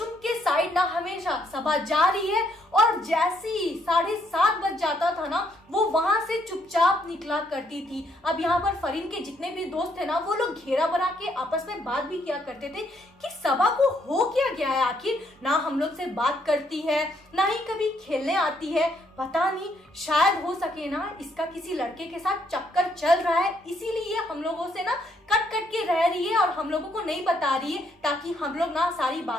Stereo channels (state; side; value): normal; both; correlation 0.72